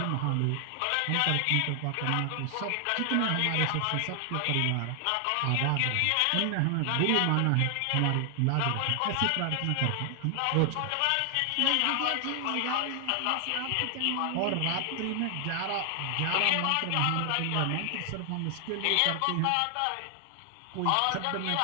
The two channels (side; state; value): both; different; correlation 0.00